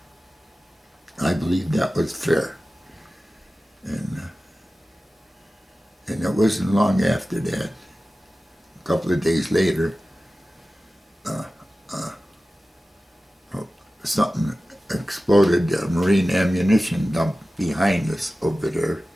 I believe that was fair. And it wasn't long after that, a couple of days later, something exploded, a marine ammunition dump behind us over there.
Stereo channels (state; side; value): normal; both; correlation 0.95